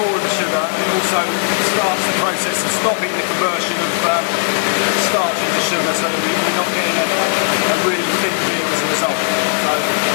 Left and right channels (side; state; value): right; silent; digital silence